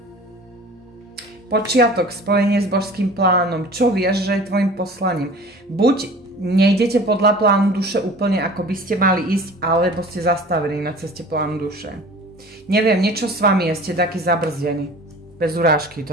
Počiatok, spojenie s božským plánom. Čo vieš, že je tvojim poslaním? Buď nejdete podľa plánu duše úplne ako by ste mali ísť, alebo ste zastavení na ceste plánu duše. Neviem, niečo s vami je, ste taký zabrzdení. Bez urážky,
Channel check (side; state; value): both; normal; correlation 0.42